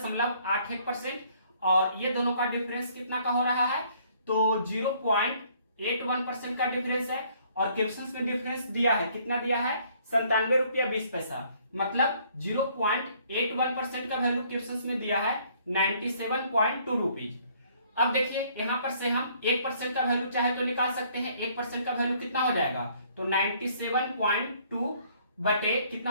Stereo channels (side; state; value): both; inverted; correlation -0.62